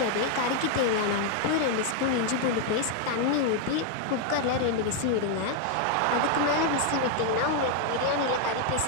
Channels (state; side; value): different; both; correlation 0.00